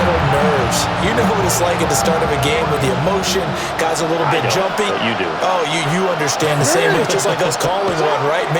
nerves. You know what it's like at the start of a game with the emotion. Guys are a little bit jumpy. You do. Oh, you understand the same. It's just like us calling one, right?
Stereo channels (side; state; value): both; identical; correlation 1.00